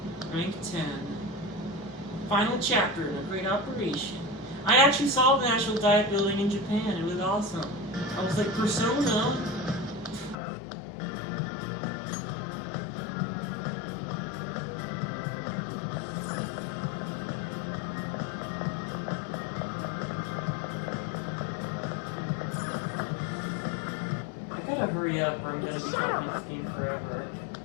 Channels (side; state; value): right; drops out; at 10.4 s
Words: Rank 10. Final chapter in a great operation. I actually saw the National Diet Building in Japan. It was awesome. I was like, Persona? I gotta hurry up or I'm gonna be talking this game forever.